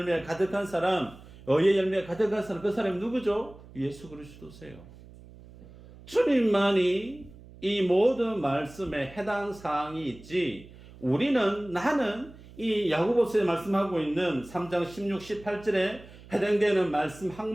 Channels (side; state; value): right; noise; hum, 20 dB below the sound